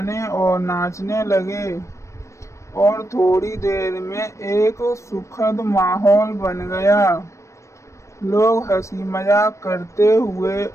और नाचने लगे और थोड़ी देर में एक सुखद माहौल बन गया। लोग हंसी मजाक करते हुए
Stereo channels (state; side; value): late; right; 0.15 ms